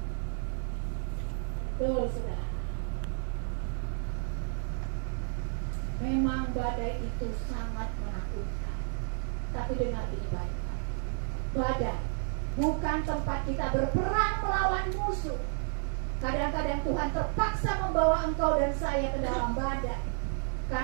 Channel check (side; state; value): left; silent; 57 dB below the other